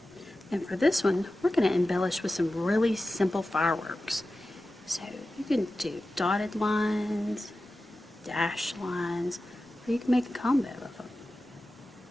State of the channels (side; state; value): both; normal; correlation 0.94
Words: And for this one, we're going to embellish with some really simple fireworks. So you can do dotted lines, dashed lines, or you can make a combo of them.